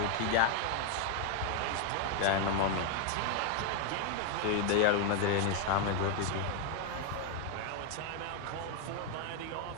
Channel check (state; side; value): different; both; correlation 0.00